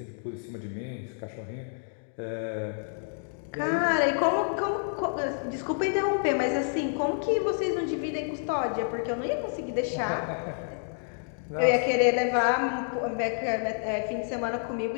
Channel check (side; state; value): right; silent; digital silence